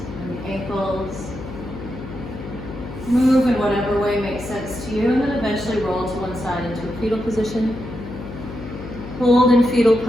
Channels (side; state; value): left; noise; hum, 11 dB below the sound